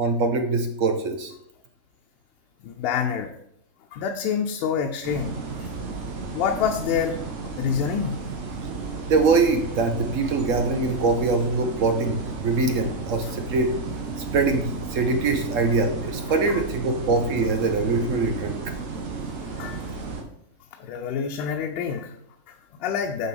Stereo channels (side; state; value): left; late; 3.7 ms